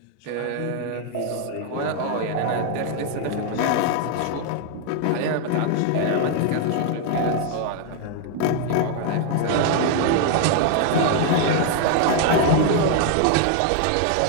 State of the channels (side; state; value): both; different; correlation 0.00